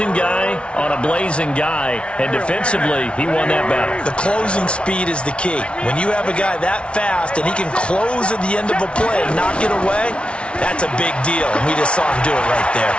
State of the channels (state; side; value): late; right; 0.059 ms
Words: guy on a blazing guy, and defensively, he won that battle. The closing speed is the key. When you have a guy that fast and he can close at the end of a play and knock it away, that's a big deal, and we just saw him do it right there.